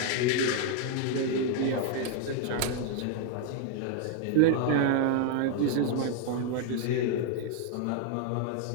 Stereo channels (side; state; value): both; different; correlation 0.00